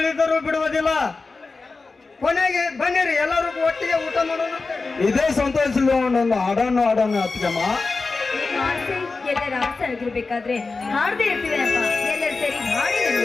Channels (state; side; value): quieter; right; 4.0 dB